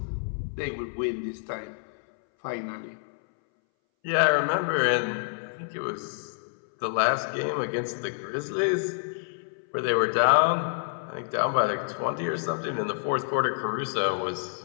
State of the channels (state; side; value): silent; right; 59 dB below the other